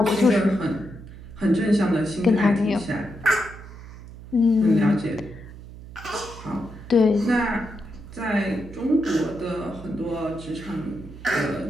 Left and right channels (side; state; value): right; noise; hum, 15 dB below the sound